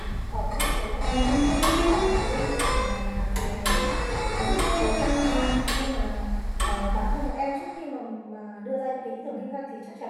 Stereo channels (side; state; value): both; identical; correlation 1.00